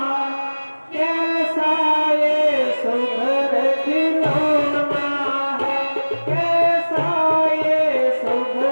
कैसा ये सुघर खिलौना है, कैसा ये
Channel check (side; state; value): both; inverted; correlation -1.00